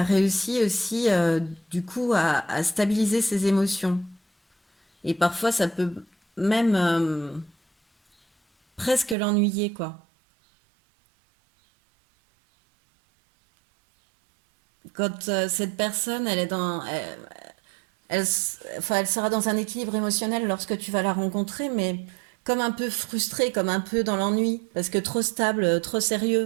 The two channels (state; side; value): drops out; left; at 9.2 s